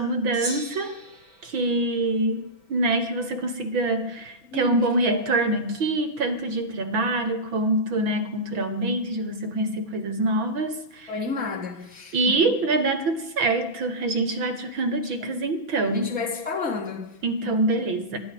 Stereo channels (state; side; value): late; left; 6.0 ms